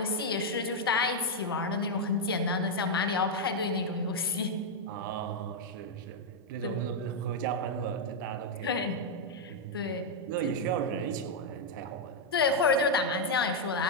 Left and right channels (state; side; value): normal; both; correlation -0.02